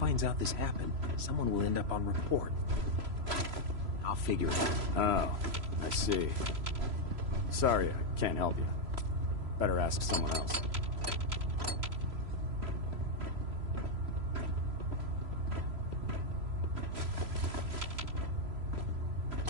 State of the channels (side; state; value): left; late; 3.0 ms